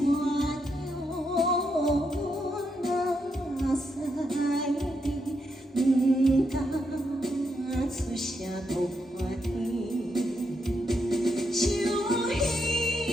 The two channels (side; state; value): both; normal; correlation 0.80